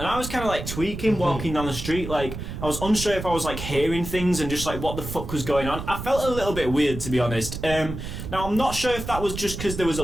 I was kind of like tweaking, walking down the street, like I was unsure if I was like hearing things and just like what the fuck was going on. I felt a little bit weird, to be honest. Now I'm not sure if that was just because there was a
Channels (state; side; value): noise; right; rumble, 8 dB below the sound